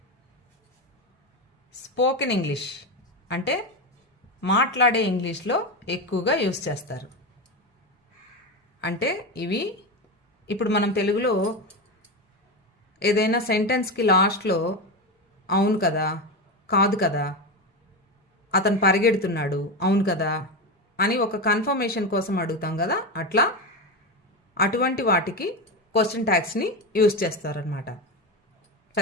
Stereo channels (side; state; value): both; normal; correlation 0.17